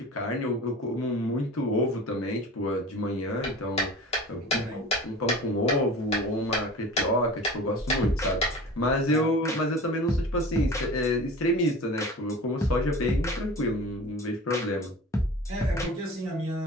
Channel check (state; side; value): normal; both; correlation 0.38